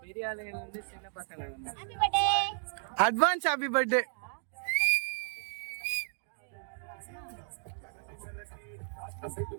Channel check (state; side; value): silent; left; 55 dB below the other